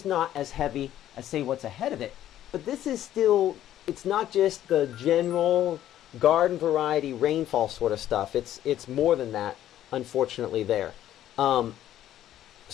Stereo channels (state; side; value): quieter; right; 12.2 dB